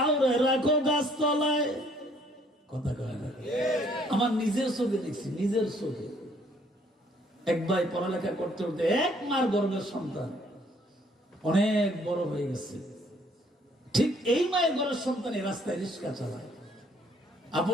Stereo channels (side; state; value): both; normal; correlation 0.63